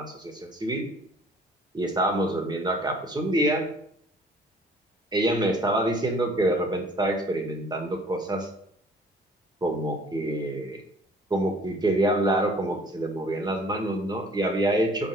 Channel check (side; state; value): both; normal; correlation 0.54